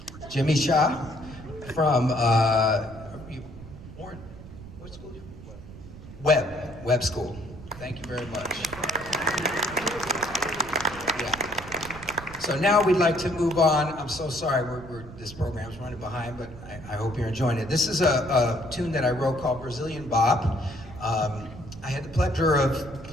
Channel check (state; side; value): noise; right; rumble, 15 dB below the sound